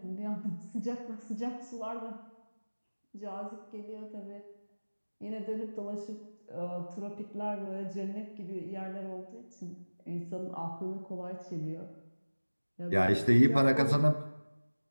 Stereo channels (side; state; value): both; inverted; correlation -1.00